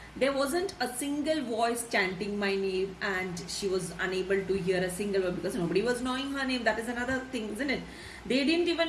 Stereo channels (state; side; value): identical; both; correlation 1.00